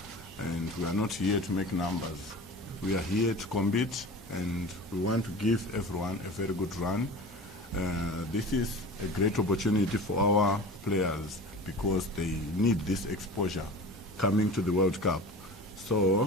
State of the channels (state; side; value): normal; both; correlation 0.36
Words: and we are not here to make numbers. We are here to compete, and we want to give everyone a very good run. This is a great opportunity for our players because they need this exposure coming to the World Cup.